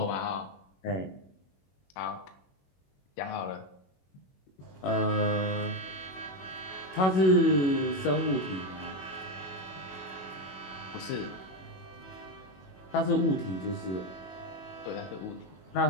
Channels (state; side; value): late; right; 21 ms